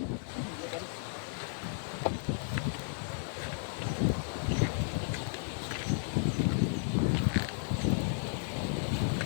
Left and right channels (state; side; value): silent; right; digital silence